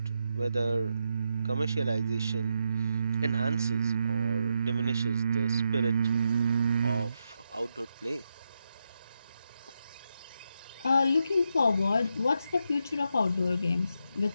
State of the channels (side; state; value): both; inverted; correlation -0.83